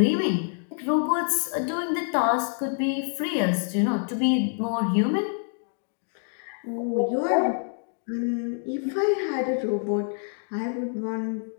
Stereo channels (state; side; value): silent; right; 58 dB below the other